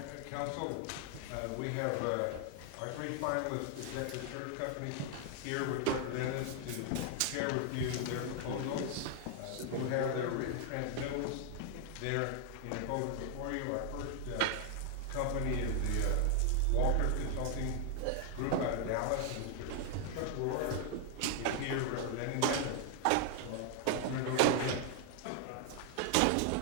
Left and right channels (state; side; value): different; both; correlation 0.00